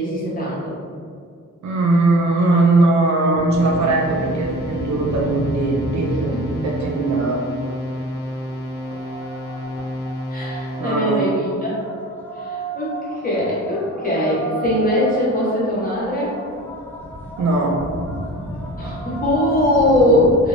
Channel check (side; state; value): both; normal; correlation 0.38